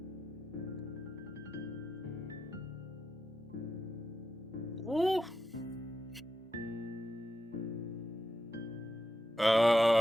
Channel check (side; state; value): both; normal; correlation 0.87